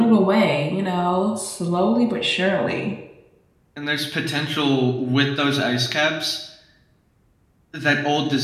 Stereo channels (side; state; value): both; identical; correlation 1.00